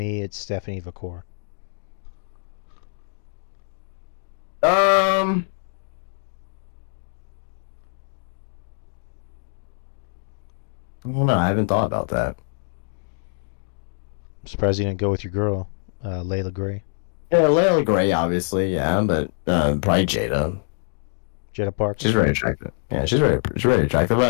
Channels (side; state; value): right; silent; digital silence